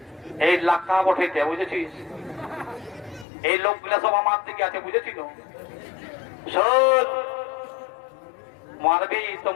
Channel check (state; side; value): drops out; right; at 3.2 s